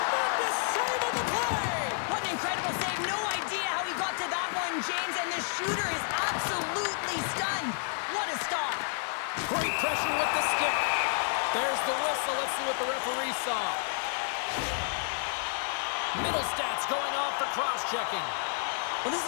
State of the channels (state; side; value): silent; right; digital silence